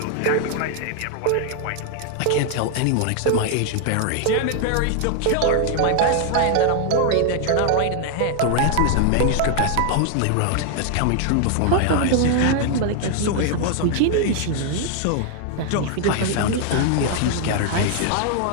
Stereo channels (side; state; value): both; different; correlation 0.00